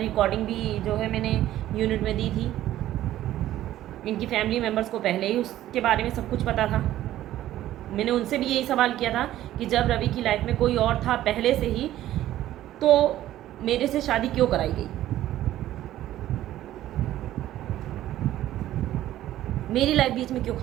भी जो है मैंने यूनिट में दी थी। इनकी फैमिली मेम्बर्स को पहले ही उसके बारे में सब कुछ पता था। मैंने उनसे भी यही सवाल किया था कि जब रवि की लाइफ में कोई और था पहले से ही, तो मेरे से शादी क्यों कराई गई, मेरी लाइफ बीच में क्यों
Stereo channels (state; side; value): quieter; left; 13.6 dB